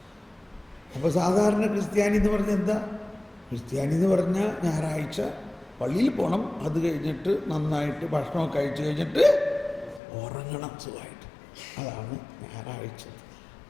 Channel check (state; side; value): drops out; right; at 10.0 s